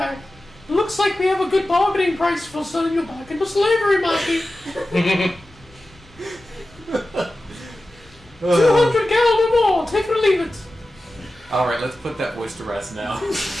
Looks like we have a good bargaining price for selling you back into slavery, Mackie. 200 gal or more. Take it or leave it. Alright, let's put that voice to rest now.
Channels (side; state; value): both; normal; correlation 0.94